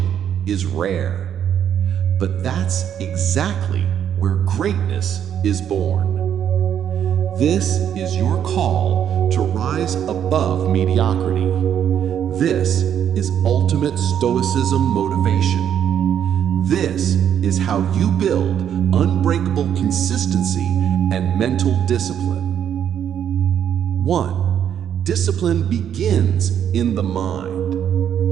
is rare. But that's exactly where greatness is born. This is your call to rise above mediocrity. This is ultimate Stoicism motivation. This is how you build unbreakable consistency and mental discipline. 1. Discipline begins in the mind.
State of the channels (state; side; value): quieter; left; 9.3 dB